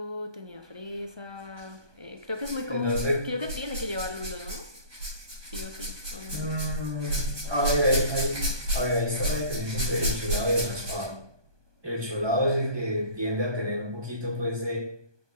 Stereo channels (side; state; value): left; late; 1.2 ms